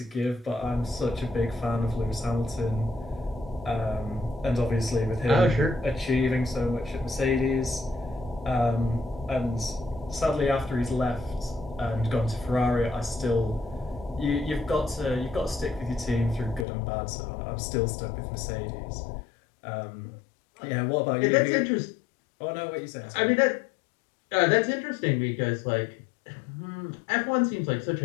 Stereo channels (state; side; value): drops out; right; at 16.7 s